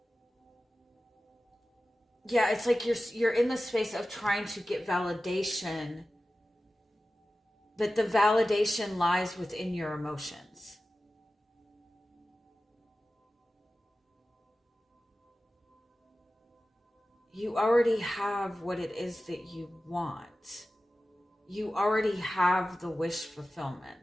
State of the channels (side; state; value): both; normal; correlation 0.95